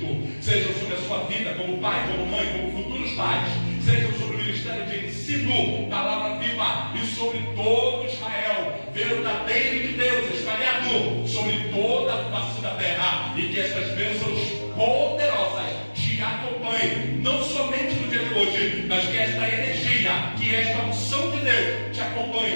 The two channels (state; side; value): inverted; both; correlation -1.00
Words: sejam sobre a sua vida, como pai, como mãe, como futuros pais, sejam sobre o ministério de ensino, palavra viva, e sobre todo Israel, verdadeiro de Deus, espalhado sobre toda a face da terra, e que estas bênçãos poderosas te acompanhem, não somente no dia de hoje, mas que esta energia, que esta unção de Deus te